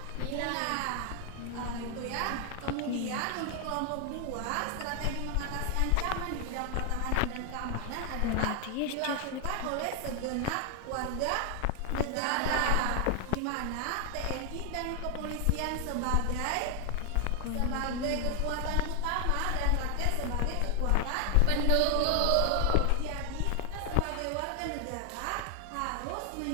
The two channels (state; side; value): different; both; correlation 0.00